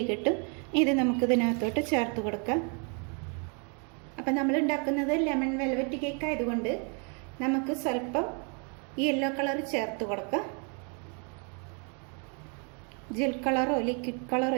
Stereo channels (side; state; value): left; quieter; 37.6 dB